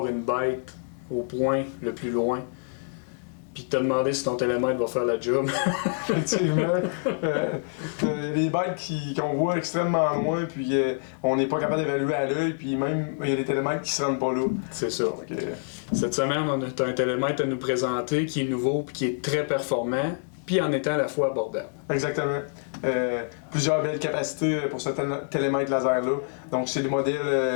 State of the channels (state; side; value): silent; right; digital silence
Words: une bête au point le plus loin, puis de te demander si ton télémètre va faire la job? Effectivement. Les bêtes qu'on voit extrêmement loin, puis on n'est pas capable d'évaluer à l'œil, puis même il y a des télémètres qui se rendent pas là. C'est ça. Donc, Cette semaine, on a un télémètre à nous présenter qui est nouveau, puis qui est très performant, puis en étant à la fois abordable. Exactement. Plusieurs belles capacités pour ce télémètre laser-là. Donc, c'est le